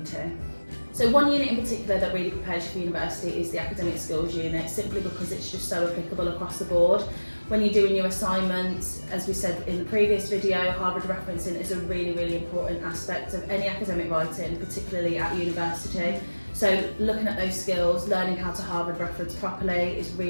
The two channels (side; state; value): both; inverted; correlation -1.00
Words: So one unit in particular that really prepares you for university is the academic skills unit, simply because it's just so applicable across the board. When you're doing your assignments, as we said in the previous video, Harvard referencing is a really important aspect of any academic writing, particularly at university. So looking at those skills, learning how to Harvard reference properly is